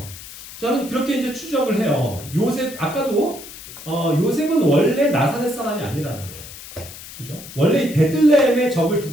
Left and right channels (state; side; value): noise; left; hiss, 15 dB below the sound